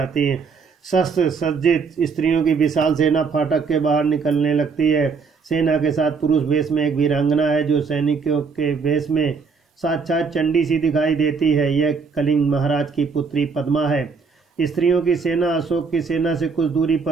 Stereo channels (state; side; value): quieter; left; 5.2 dB